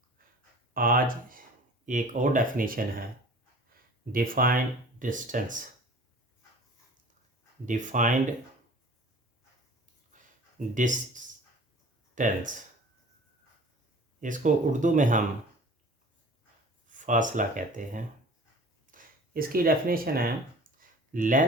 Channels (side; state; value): both; normal; correlation 0.45